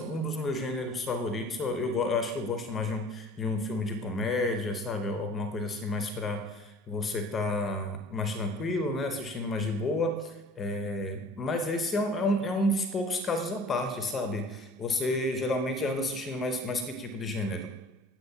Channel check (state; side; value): normal; both; correlation 0.47